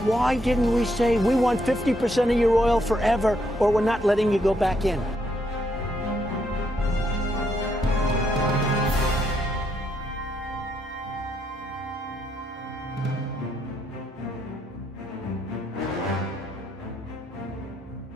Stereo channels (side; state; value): both; normal; correlation 0.75